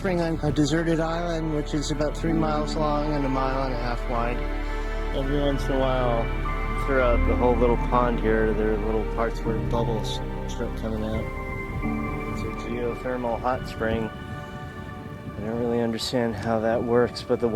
on a deserted island, which is about 3 miles long and 1.5 miles wide. Every once in a while, throughout the whole little pond here, there are little parts where bubbles start coming out. It's a geothermal hot spring. I don't really understand how that works, but the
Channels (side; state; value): both; identical; correlation 1.00